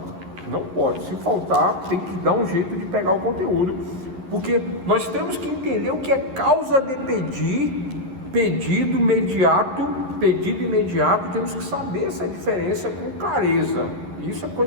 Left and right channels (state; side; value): late; left; 11 ms